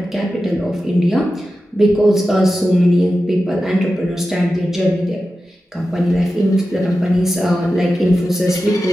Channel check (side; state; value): both; normal; correlation 0.92